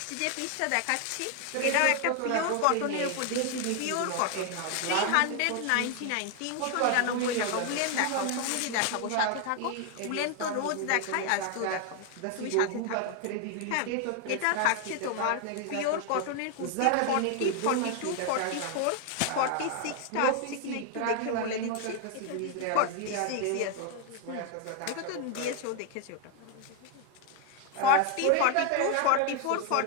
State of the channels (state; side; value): different; both; correlation 0.00